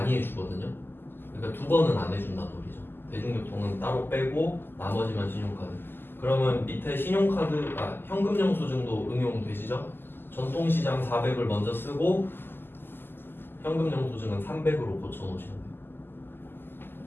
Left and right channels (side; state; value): right; late; 0.099 ms